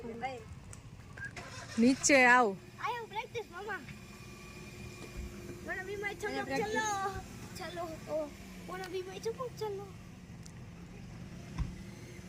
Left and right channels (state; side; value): identical; both; correlation 1.00